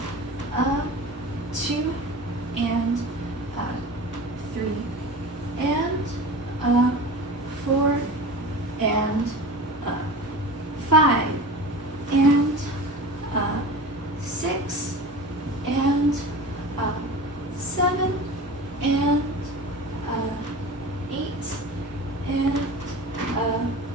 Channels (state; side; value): normal; both; correlation 0.34